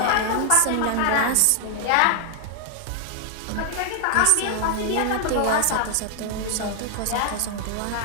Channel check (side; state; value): both; different; correlation 0.00